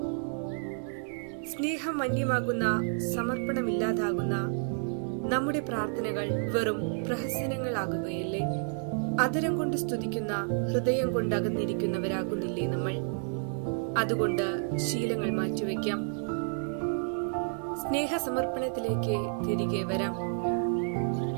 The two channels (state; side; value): silent; left; 58 dB below the other